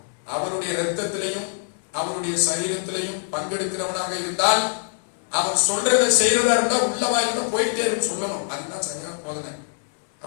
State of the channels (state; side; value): silent; right; 59 dB below the other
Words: அவருடைய ரத்தத்திலையும் அவருடைய சரீரத்திலையும் பங்கெடுக்கிறவனாக இருந்தால் அவர் சொல்றதை செய்யறதா இருந்தா உள்ளவா இருந்தா போயிட்டே இருக்கு சொல்லணும். அதுதான் சரியான போதனை.